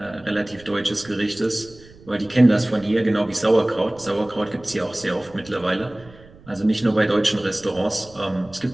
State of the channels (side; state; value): right; noise; rumble, 23 dB below the sound